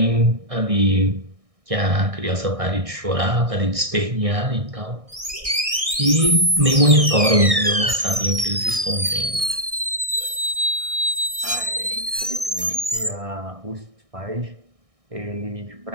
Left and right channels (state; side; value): late; left; 1.6 ms